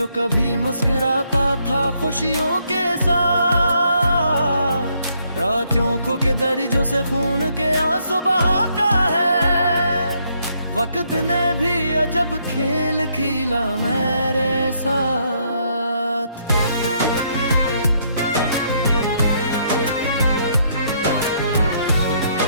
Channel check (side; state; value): both; inverted; correlation -0.72